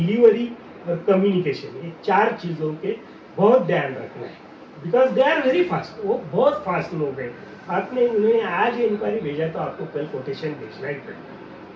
और कम्युनिकेशन, ये 4 चीज़ों के बहुत ध्यान रखना है, because they are very fast. वो बहुत फास्ट लोग हैं। आपने उन्हें आज इंक्वायरी भेजा तो आपको कल कोटेशन भेजना ही पड़ेगा।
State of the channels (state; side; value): identical; both; correlation 1.00